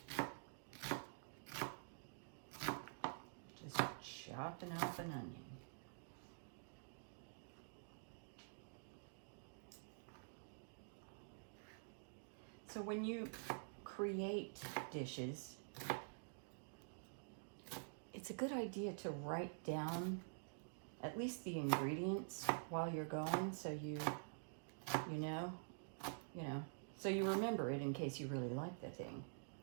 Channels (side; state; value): left; silent; digital silence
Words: chopping up an onion. So when you create dishes, it's a good idea to write down at least the ingredients while you're going, so you know, so you remember it in case you really like the thing.